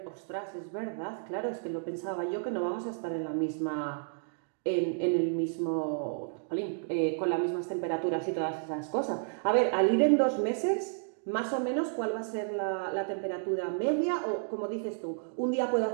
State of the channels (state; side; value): silent; left; digital silence